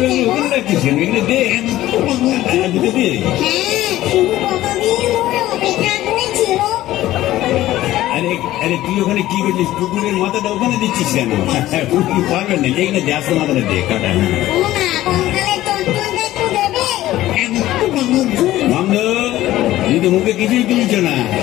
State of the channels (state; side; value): quieter; right; 15.0 dB